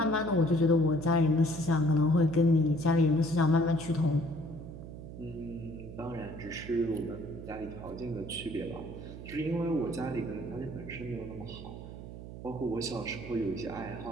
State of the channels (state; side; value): noise; right; hum, 12 dB below the sound